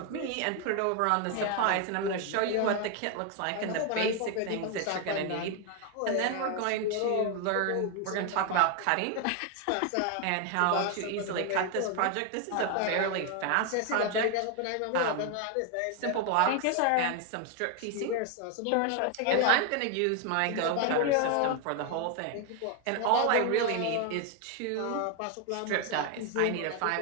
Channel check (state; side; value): different; both; correlation 0.01